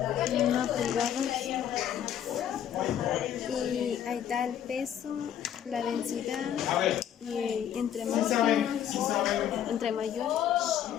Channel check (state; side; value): quieter; right; 10.0 dB